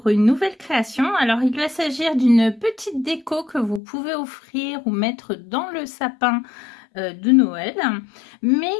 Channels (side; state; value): right; drops out; at 3.8 s